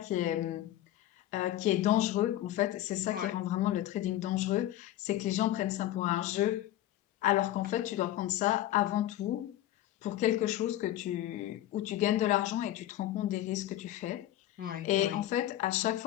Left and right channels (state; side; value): quieter; right; 13.7 dB